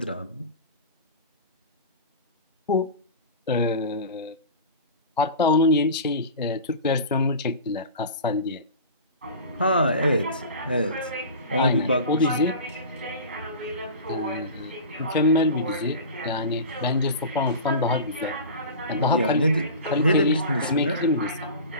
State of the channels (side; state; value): both; inverted; correlation -0.33